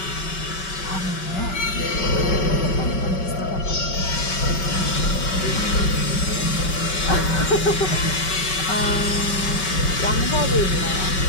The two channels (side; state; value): right; late; 5.3 ms